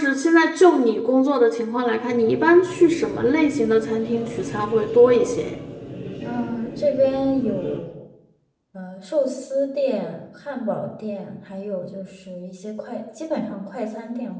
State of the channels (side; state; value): both; identical; correlation 1.00